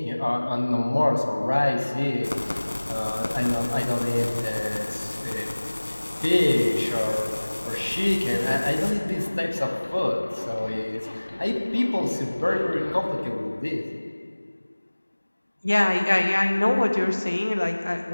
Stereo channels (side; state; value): both; inverted; correlation -1.00